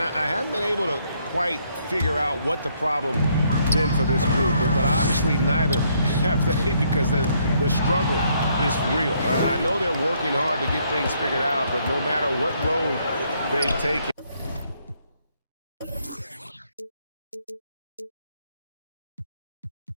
haven't been able to quite figure out what the problem been for this group, but obviously neither have they, because the struggle is real. I know they're working hard to get things figured out, but no matter what road they've taken.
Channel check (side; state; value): both; inverted; correlation -0.70